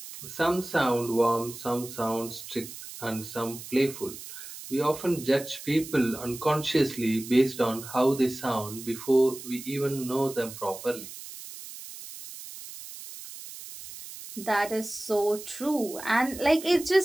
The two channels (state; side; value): noise; right; hiss, 13 dB below the sound